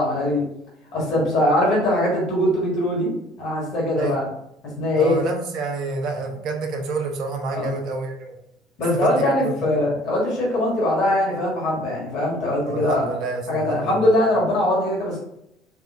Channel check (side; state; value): both; normal; correlation 0.55